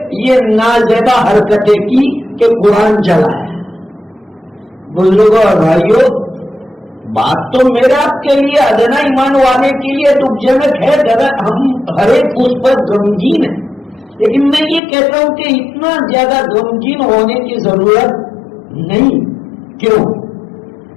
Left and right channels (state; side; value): drops out; right; at 14.8 s